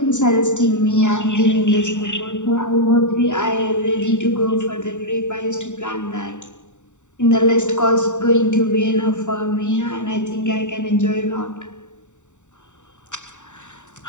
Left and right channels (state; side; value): late; right; 0.84 ms